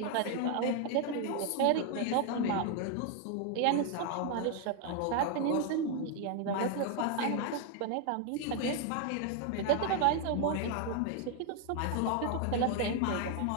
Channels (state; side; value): different; both; correlation 0.01